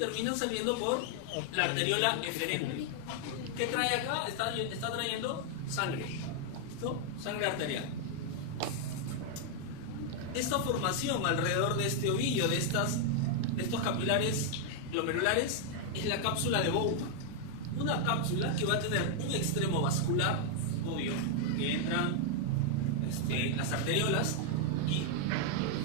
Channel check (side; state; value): both; different; correlation 0.00